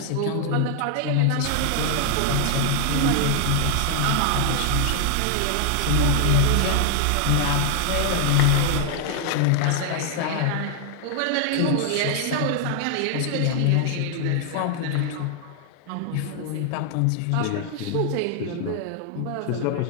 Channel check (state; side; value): different; both; correlation 0.00